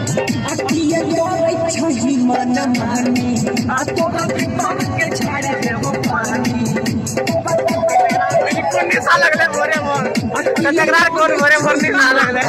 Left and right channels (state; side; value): identical; both; correlation 1.00